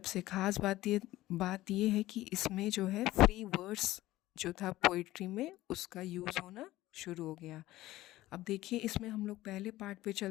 ख़ास बात ये है कि इसमें जो है फ्री वर्ड्स जो था पोइट्री में उसका यूज़ होना शुरू हो गया। अब देखिए इसमें हम लोग पहले पार्ट पे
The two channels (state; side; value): quieter; right; 16.4 dB